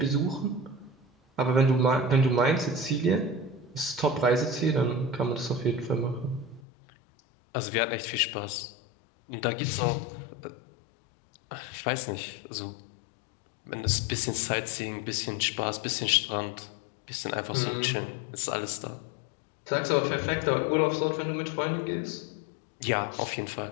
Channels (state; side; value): drops out; right; at 6.6 s